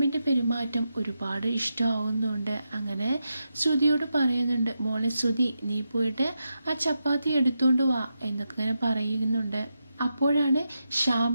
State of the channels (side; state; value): both; inverted; correlation -0.87